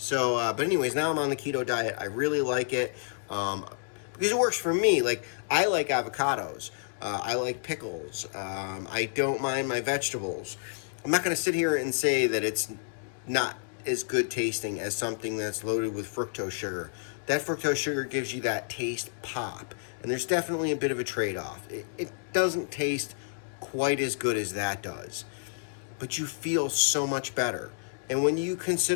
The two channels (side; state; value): right; silent; digital silence